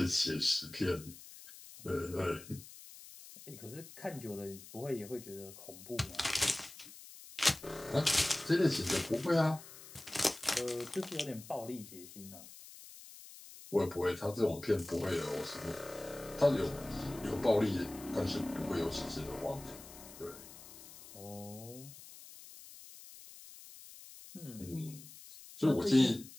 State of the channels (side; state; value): left; noise; hiss, 17 dB below the sound